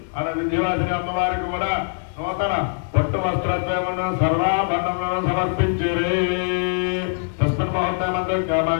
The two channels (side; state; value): right; silent; digital silence